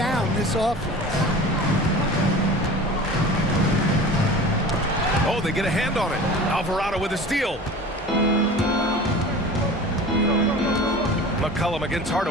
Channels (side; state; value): both; normal; correlation 0.38